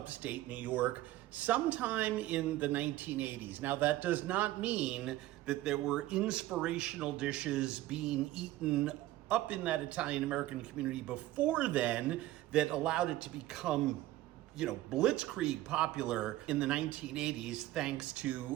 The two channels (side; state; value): left; quieter; 15.9 dB